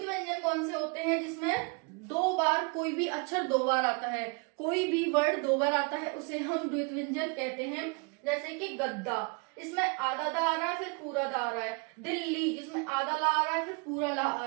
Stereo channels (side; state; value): left; quieter; 32.2 dB